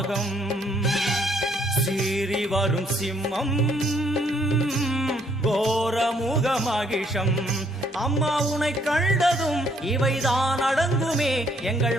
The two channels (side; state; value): both; normal; correlation 0.68